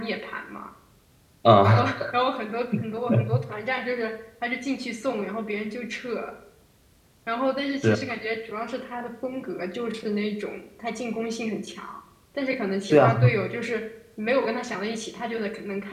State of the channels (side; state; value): both; identical; correlation 1.00